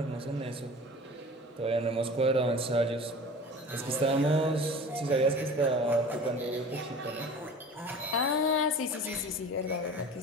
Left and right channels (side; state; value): both; normal; correlation 0.40